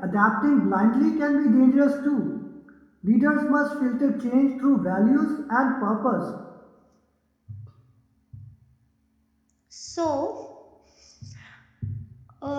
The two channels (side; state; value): both; identical; correlation 1.00